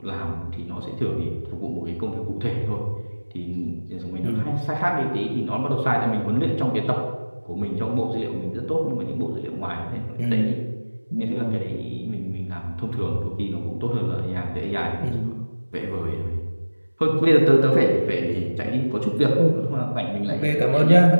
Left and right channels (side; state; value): both; inverted; correlation -1.00